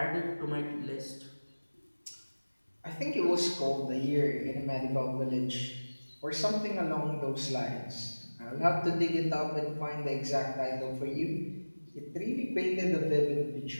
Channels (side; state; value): both; inverted; correlation -1.00